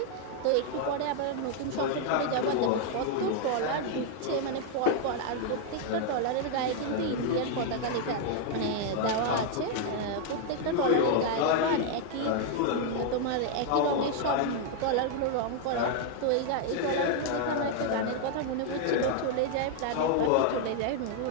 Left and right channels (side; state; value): both; different; correlation 0.00